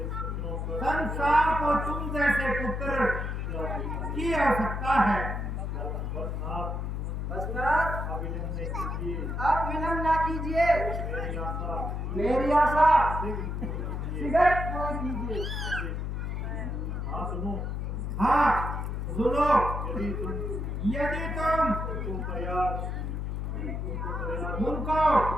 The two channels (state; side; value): noise; left; hum, 3 dB below the sound